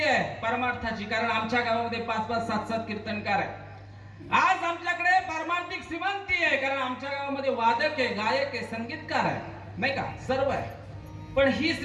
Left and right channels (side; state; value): both; identical; correlation 1.00